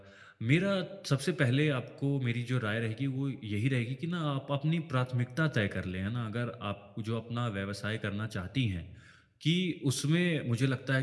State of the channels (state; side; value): identical; both; correlation 1.00